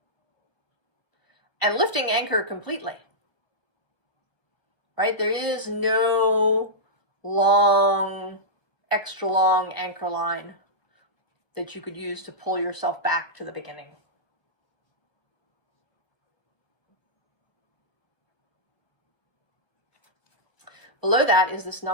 And lifting anchor completely. Right? There is no extra long anchor line that you could use to pull yourself back to the beginning. Below that is this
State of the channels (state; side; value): late; right; 1.0 ms